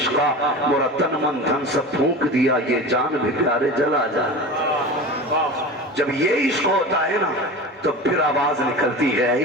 مورا تن من دھن سب پھونک دیا یہ جان بھی پیارے جلا جانا. جب یہ عشق ہوتا ہے نا تو پھر آواز نکلتی ہے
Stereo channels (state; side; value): normal; both; correlation 0.32